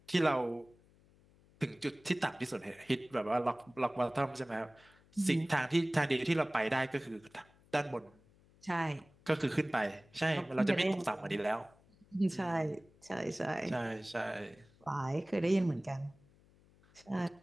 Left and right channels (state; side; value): noise; left; hum, 29 dB below the sound